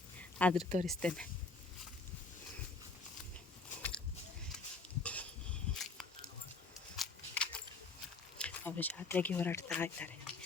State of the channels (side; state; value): right; quieter; 3.8 dB